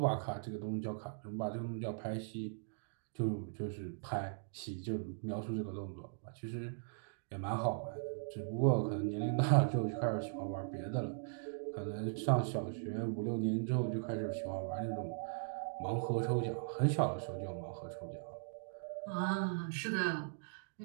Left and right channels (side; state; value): left; silent; digital silence